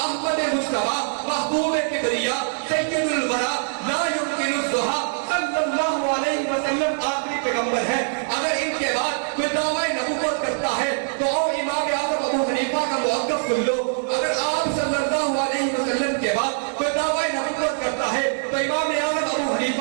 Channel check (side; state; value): left; silent; 63 dB below the other